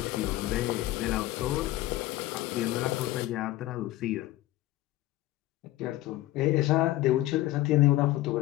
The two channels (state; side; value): quieter; right; 16.3 dB